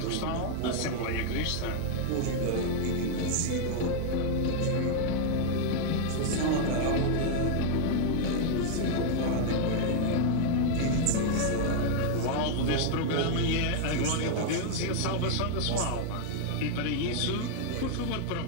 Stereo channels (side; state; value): both; different; correlation 0.00